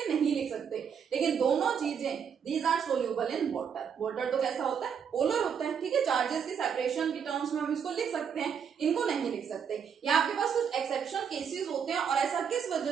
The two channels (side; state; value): left; quieter; 7.3 dB